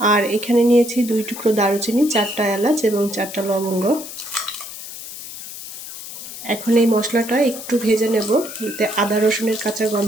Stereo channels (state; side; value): noise; left; hiss, 11 dB below the sound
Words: আর এখানে নিয়েছি 2 টুকরো দারুচিনি, 4টা এলাচ এবং 4টা লবঙ্গ। এখন এই মশলাটা একটু ভেজে নেব, যাতে আদা রসুনের কাঁচা